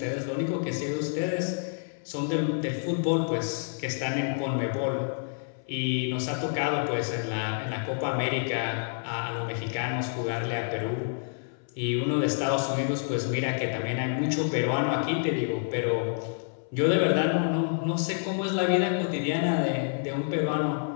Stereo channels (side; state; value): right; silent; 59 dB below the other